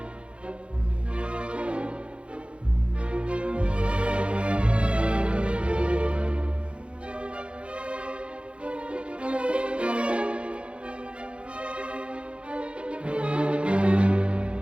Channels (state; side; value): late; left; 0.059 ms